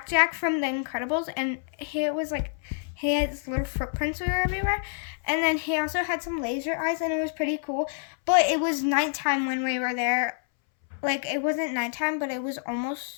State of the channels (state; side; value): silent; right; 59 dB below the other